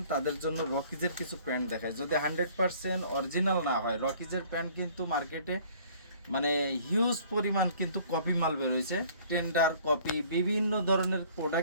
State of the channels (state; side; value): inverted; both; correlation -0.54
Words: তাদের জন্য রকিজের কিছু প্যান্ট দেখায়। যদি 100% অরিজিনাল না হয়, রকিজের প্যান্ট কিন্তু মার্কেটে মানে হিউজ পরিমাণ কিন্তু কপি মাল বের হয়েছে, টেন্ডার কপি, বিভিন্ন ধরনের